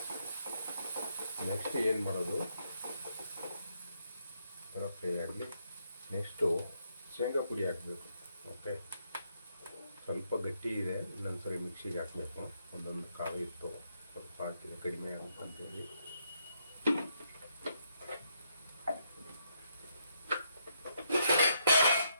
ನೆಕ್ಸ್ಟ್ ಏನು ಮಾಡೋದು, ಥರ ಫ್ರೈ ಆಗಲಿ. ನೆಕ್ಸ್ಟು ಶೇಂಗಾ ಪುಡಿ ಹಾಕಬೇಕು. ಓಕೆ, ಸ್ವಲ್ಪ ಗಟ್ಟಿ ಇದೆ, ಇನ್ನೊಂದು ಸರಿ ಮಿಕ್ಸಿಗೆ ಹಾಕಬೇಕು. ಒಂದೊಂದು ಕಾವು ಇತ್ತು, ಸ್ವಲ್ಪ ಹಾಕಿದ್ರೆ ಕಡಿಮೆ ಆಗುತ್ತಂತೇಳಿ.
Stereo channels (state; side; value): inverted; both; correlation -0.77